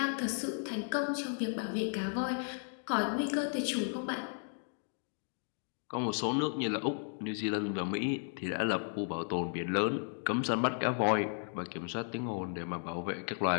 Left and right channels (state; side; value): silent; right; 55 dB below the other